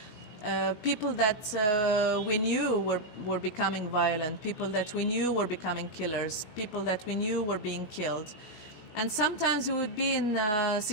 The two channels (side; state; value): right; late; 16 ms